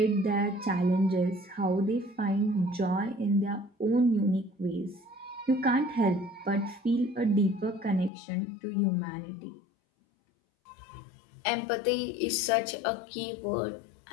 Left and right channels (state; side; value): drops out; right; at 8.1 s